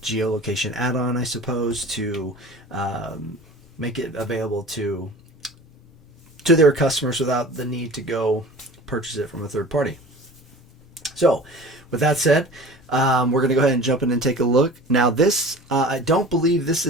geolocation add-on, I suppose, to make it available to their customers without the need to go purchase it from a third party. So, with that said, we're going to go ahead and jump in and take a look. Now this, I don't believe this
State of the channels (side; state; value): both; normal; correlation 0.40